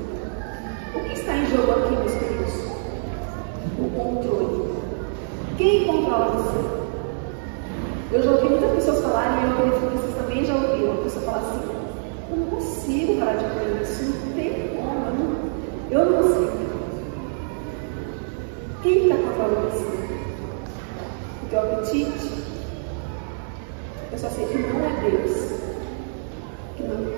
O que está em jogo aqui, meus queridos? O controle. Quem controla você? Eu já ouvi muitas pessoas falarem, e eu acredito que vocês também já ouviram. apetite, eu só sei que não é Deus. Que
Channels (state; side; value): silent; left; digital silence